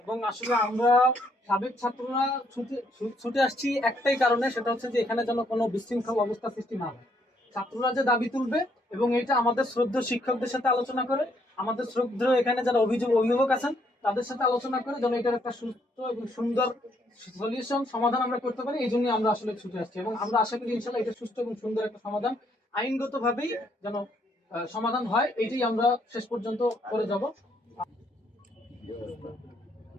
এবং আসলে আমরা সাবেক ছাত্ররা ছুটে আসছি একটাই কারণে, সেটা হচ্ছে যে এখানে যেন কোনো বিশৃঙ্খল অবস্থা সৃষ্টি না হয়। ছাত্ররা যে দাবি তুলবে এবং এটা আমাদের শ্রদ্ধেয় শিক্ষকদের সাথে আলোচনা করে, আমাদের শ্রদ্ধেয় এখানে যারা অভিভাবক আছেন তাদের সাথে আলোচনা করে যেন এটার একটা সুস্থ এবং সুন্দর সলিউশন সমাধান আমরা করতে পারি। এই জন্য আমরা আসলে ছুটে আসছি এবং আমরা আশা করি ইনশাআল্লাহ এটা সুস্থ এবং সুন্দর একটা সমাধান আইনগতভাবেই যেন সমাধান হয়, এটাই আমরা শেষ পর্যন্ত করে যাব।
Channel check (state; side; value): normal; both; correlation 0.71